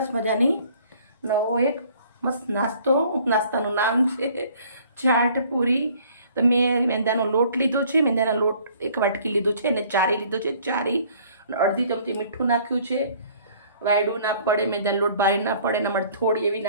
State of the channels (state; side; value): inverted; both; correlation -0.56